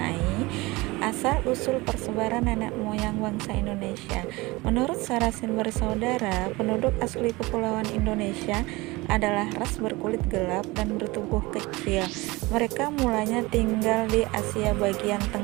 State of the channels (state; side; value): quieter; left; 22.2 dB